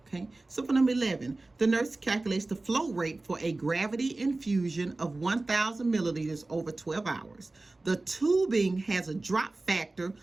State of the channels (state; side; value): quieter; left; 3.1 dB